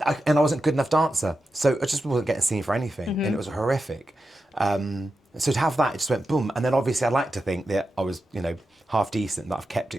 I wasn't a good enough dancer. So I just wasn't getting seen for anything, and it was horrific. So to have that, it just went boom. And then obviously I'd like to think that I was, you know, half decent, that I've kept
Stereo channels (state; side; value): normal; both; correlation 0.90